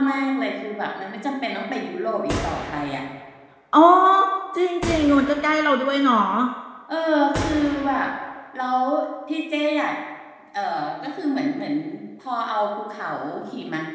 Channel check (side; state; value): both; identical; correlation 1.00